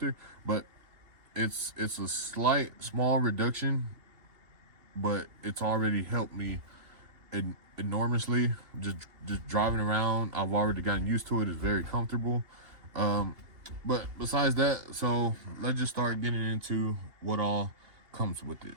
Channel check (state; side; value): late; left; 2.8 ms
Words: but it's a small reduction, but it's already helped me enormously. Just driving around, I've already gotten used to it. It's very comfortable. But besides that, so let's just start getting into what all comes with it.